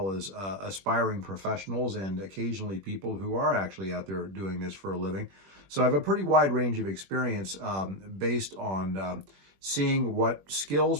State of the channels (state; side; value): late; left; 21 ms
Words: as aspiring professionals and occasionally people who are actually out there doing this for a living. So I have a pretty wide range of experience based on seeing what skills